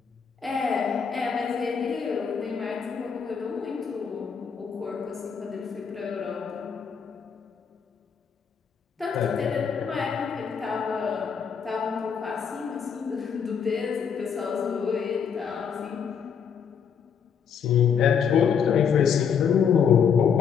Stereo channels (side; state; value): right; quieter; 6.9 dB